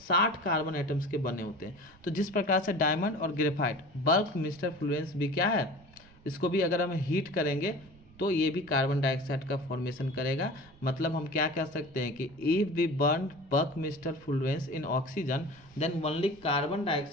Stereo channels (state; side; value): noise; right; rumble, 25 dB below the sound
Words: 60 कार्बन एटम्स के बने होते हैं। तो जिस प्रकार से डायमंड और ग्रेफाइट, बकमिस्टर फ्लोरेंस भी क्या है, इसको भी अगर हम हीट करेंगे तो ये भी कार्बन डाइऑक्साइड का फॉर्मेशन करेगा। मतलब हम क्या कह सकते हैं कि if we burn buckminsterfullerene in oxygen then only carbon